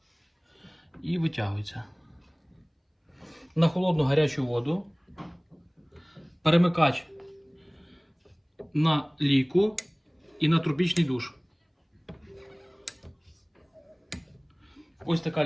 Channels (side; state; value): both; identical; correlation 1.00